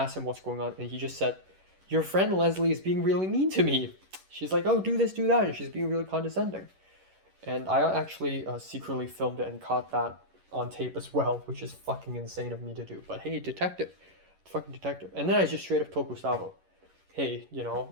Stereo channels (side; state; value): left; late; 11 ms